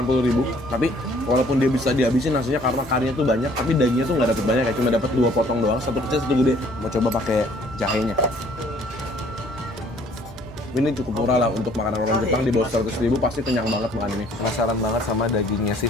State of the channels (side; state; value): both; normal; correlation 0.59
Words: tapi walaupun dia bisa dihabisin nasinya karena karinya tuh banyak, tapi dagingnya tuh nggak dapet banyak ya, cuma dapet 2 potong doang, satu kecil satu gede. Mau coba pakai jahenya. Ini cukup murah lah untuk makanan orang Jepang, di bawah 100.000 pasti kenyang banget makan ini. Penasaran banget sama dagingnya si